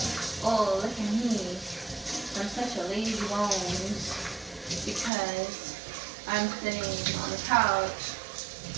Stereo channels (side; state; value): left; drops out; at 5.1 s